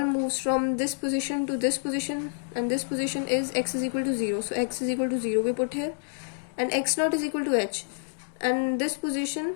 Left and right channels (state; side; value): silent; right; digital silence